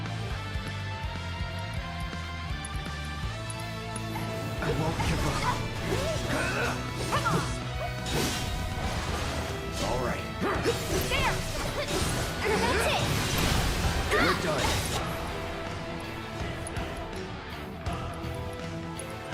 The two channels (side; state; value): both; identical; correlation 1.00